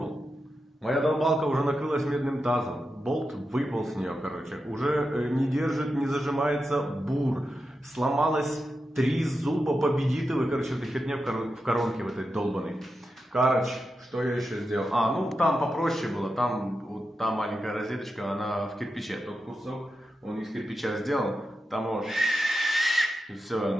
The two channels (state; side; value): normal; both; correlation 0.89